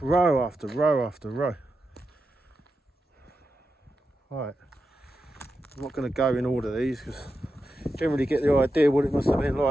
row after row after row. Right. I'm not going to go in order these because I generally get the idea what it must have been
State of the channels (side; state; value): both; normal; correlation 0.89